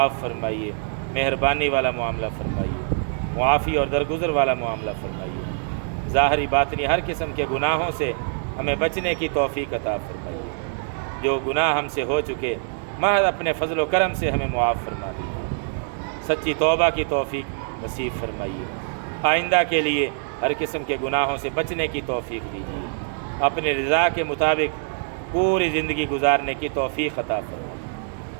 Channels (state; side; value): silent; left; digital silence